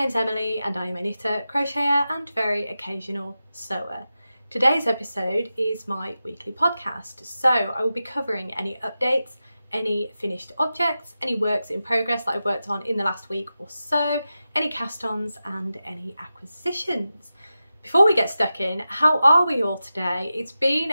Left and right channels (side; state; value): both; inverted; correlation -0.92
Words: Emily and I am a knitter, crocheter and very occasional sewer. Today's episode is my weekly podcast, so I will be covering any updates, any finished objects, any works in progress that I've worked on in the last week or so, any cast-ons and any acquisitions. Before we get stuck in, how are we all today? It's been